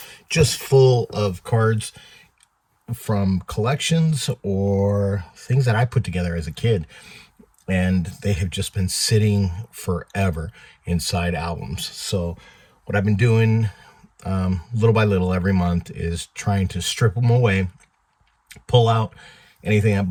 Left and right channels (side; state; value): both; identical; correlation 1.00